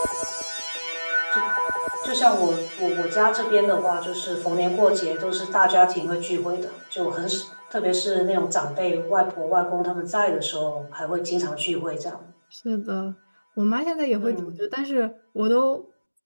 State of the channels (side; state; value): both; inverted; correlation -1.00